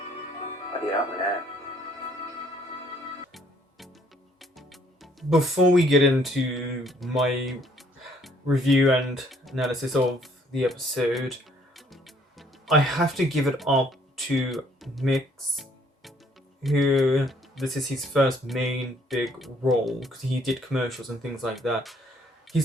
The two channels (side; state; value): both; normal; correlation 0.63